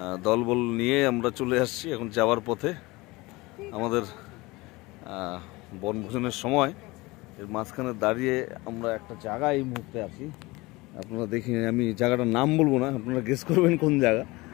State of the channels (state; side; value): quieter; right; 22.3 dB